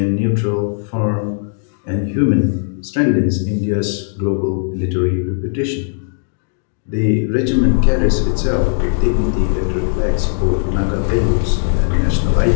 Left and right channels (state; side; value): silent; right; digital silence